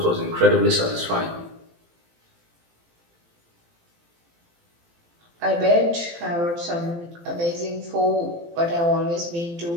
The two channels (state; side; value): late; left; 18 ms